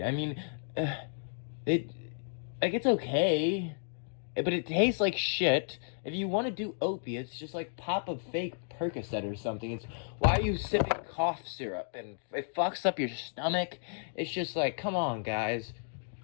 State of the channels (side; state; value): right; silent; digital silence